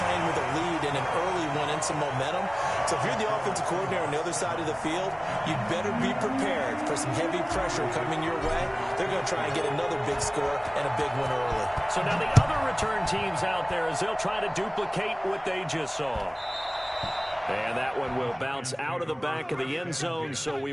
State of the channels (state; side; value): identical; both; correlation 1.00